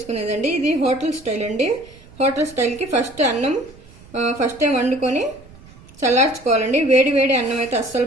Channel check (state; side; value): noise; right; rumble, 23 dB below the sound